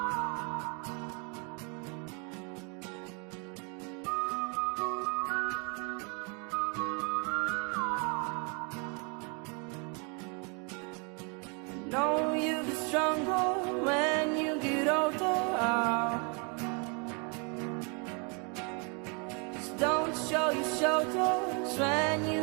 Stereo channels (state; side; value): quieter; left; 35.2 dB